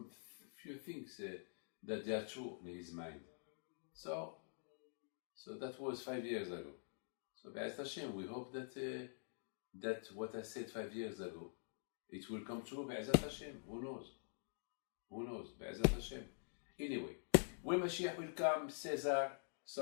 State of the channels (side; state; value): right; silent; digital silence